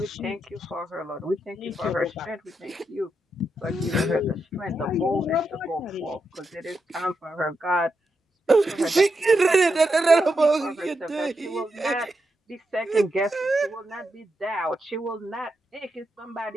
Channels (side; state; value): both; normal; correlation 0.85